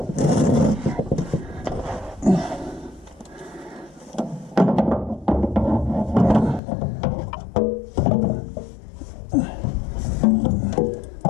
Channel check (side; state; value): right; drops out; at 6.6 s